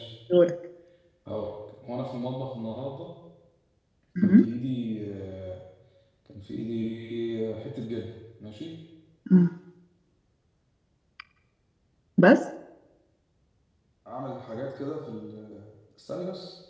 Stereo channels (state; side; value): identical; both; correlation 1.00